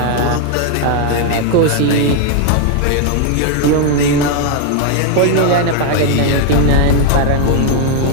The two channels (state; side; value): different; both; correlation 0.00